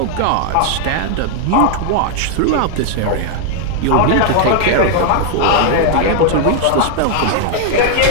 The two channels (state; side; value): different; both; correlation 0.00